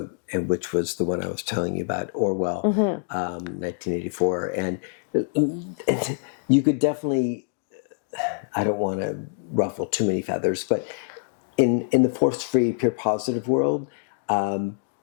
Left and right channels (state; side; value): silent; right; digital silence